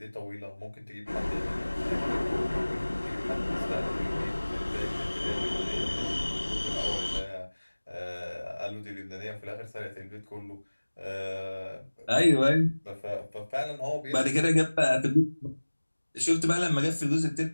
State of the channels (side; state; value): both; inverted; correlation -1.00